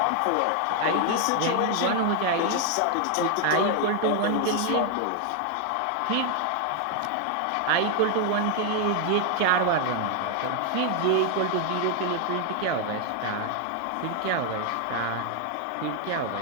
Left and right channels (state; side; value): different; both; correlation 0.00